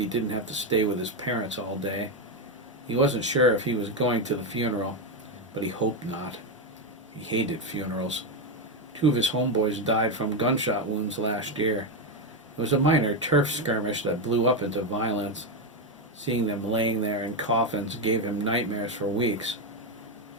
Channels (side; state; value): both; normal; correlation 0.08